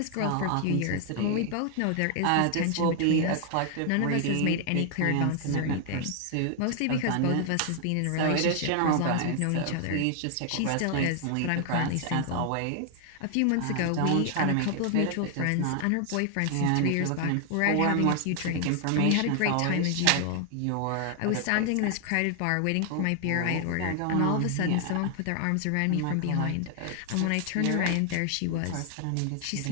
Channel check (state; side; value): different; both; correlation 0.00